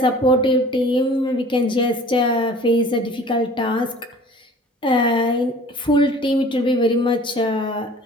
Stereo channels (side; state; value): both; normal; correlation 0.47